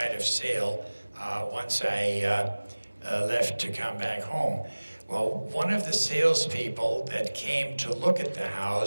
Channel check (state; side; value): inverted; both; correlation -1.00